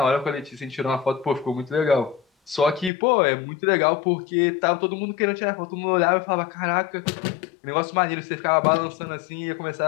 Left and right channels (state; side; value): drops out; right; at 2.9 s